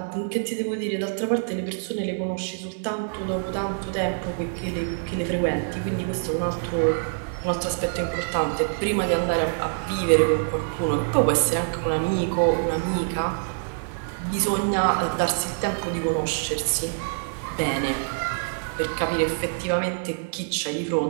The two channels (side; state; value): left; silent; digital silence